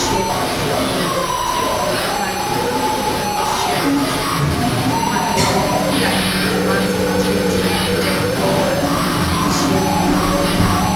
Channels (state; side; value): identical; both; correlation 1.00